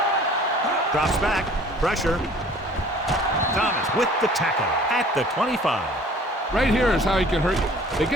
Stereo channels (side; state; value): both; normal; correlation 0.51